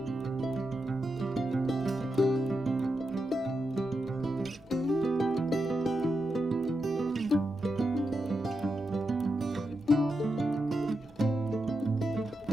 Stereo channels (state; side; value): normal; both; correlation 0.86